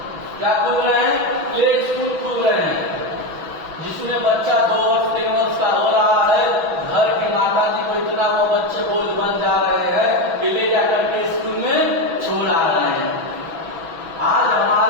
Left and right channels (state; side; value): late; left; 5.9 ms